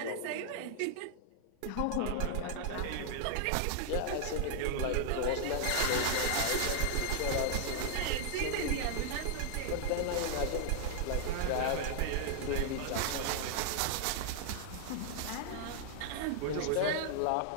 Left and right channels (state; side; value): different; both; correlation 0.00